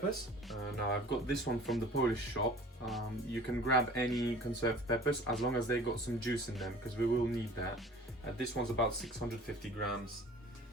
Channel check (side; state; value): both; normal; correlation 0.46